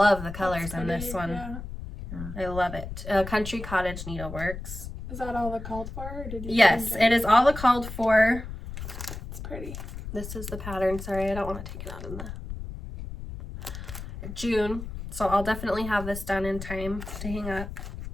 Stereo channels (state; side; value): noise; left; rumble, 9 dB below the sound